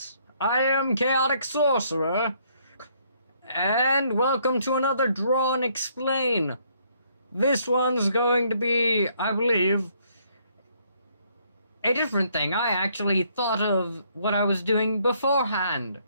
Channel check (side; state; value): both; inverted; correlation -0.68